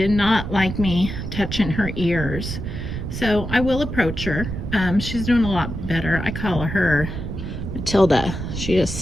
not like me touching her ears. So I will approach her. She's doing a lot better. I call her Matilda. She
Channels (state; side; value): noise; right; rumble, 6 dB below the sound